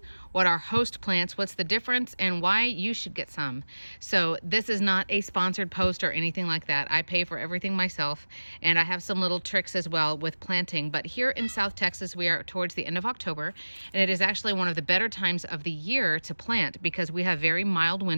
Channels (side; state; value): both; inverted; correlation -1.00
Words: what are host plants, what's the difference, and why you should get some. So this is not a sponsored post or anything like that. I pay for everything myself, and I have some little tricks as well with planting. But here in South Texas, we are towards the end of October, and it is actually one of the better times of the year to plant because we have very mild